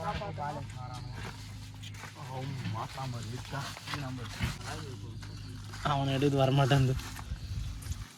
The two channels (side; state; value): both; identical; correlation 1.00